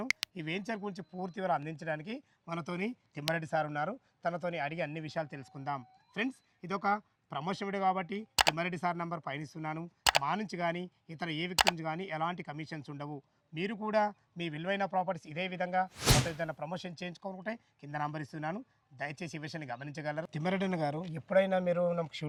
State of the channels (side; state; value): both; identical; correlation 1.00